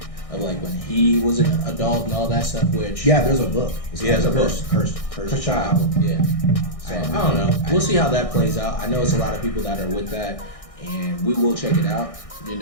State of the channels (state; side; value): late; right; 1.6 ms